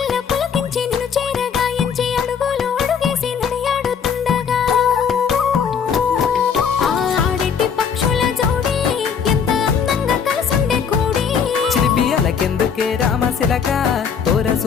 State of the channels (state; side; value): quieter; right; 6.9 dB